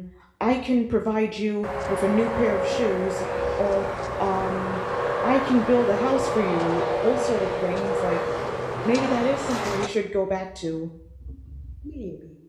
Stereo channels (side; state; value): both; identical; correlation 1.00